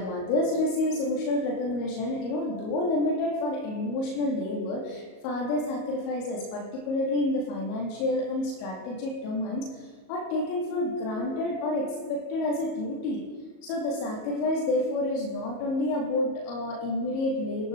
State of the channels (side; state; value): right; late; 37 ms